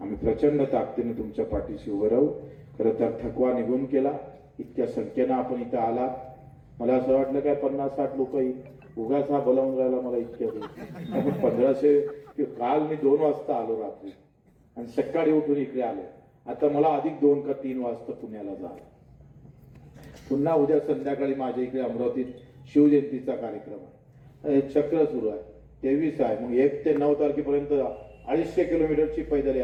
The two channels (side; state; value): both; identical; correlation 1.00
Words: प्रचंड ताकदीने तुमच्या पाठीशी उभं राहू. खरं तर थकवा निघून केला, इतक्या संख्येनं आपण इथं आलात. मला असं वाटलं काय 50-60 लोक उगाच हा बोलावून राहिला मला इतक्या आपण 1500. काल मी 2 वाजता आलो रात्री आणि सकाळी उठून इकडे आलो. आता मला अधिक 2 का 3 वाजता पुण्याला जायला. पुन्हा उद्या संध्याकाळी माझ्या इकडे अमरावतीत शिवजयंतीचा कार्यक्रम आहे. चक्र सुरू आहे. 23 आहे. मग 1 ते 9 तारखेपर्यंत 250 किलोमीटरची पैदल